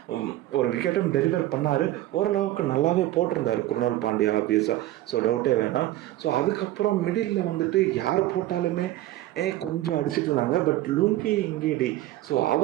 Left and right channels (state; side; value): quieter; left; 15.1 dB